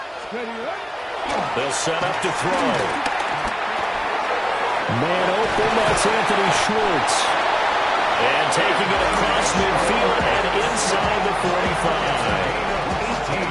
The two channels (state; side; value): identical; both; correlation 1.00